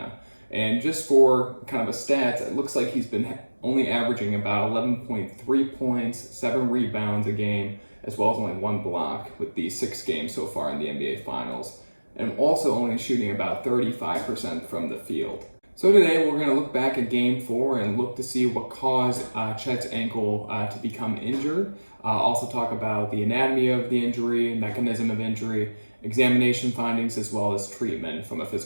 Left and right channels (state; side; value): inverted; both; correlation -1.00